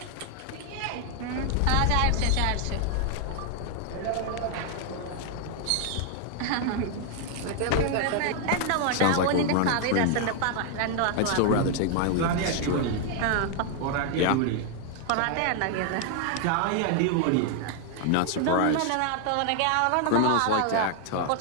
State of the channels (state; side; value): different; both; correlation 0.00